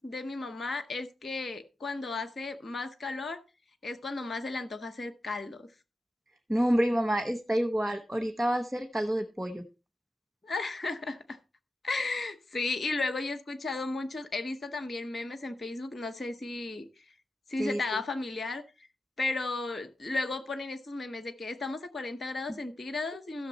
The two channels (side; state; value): both; normal; correlation 0.91